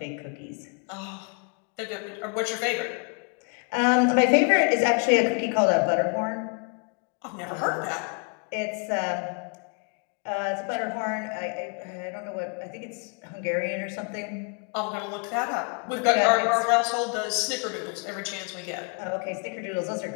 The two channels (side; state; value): right; quieter; 38.3 dB